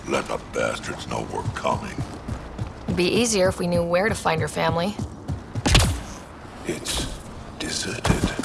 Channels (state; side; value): identical; both; correlation 1.00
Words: Let the bastards know we're coming. It'd be easier if we knew where to find your family. It's deserted.